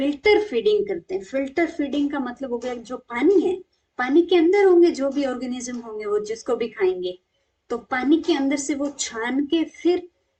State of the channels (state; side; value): identical; both; correlation 1.00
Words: फीडिंग करते हैं। फिल्टर फीडिंग का मतलब हो गया जो पानी है, पानी के अंदर होंगे जो भी ऑर्गेनिज्म होंगे, वो जिसको भी खाएंगे, तो पानी के अंदर से वो छान के फिर